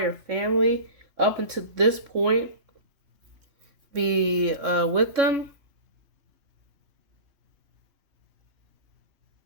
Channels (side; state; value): left; late; 3.6 ms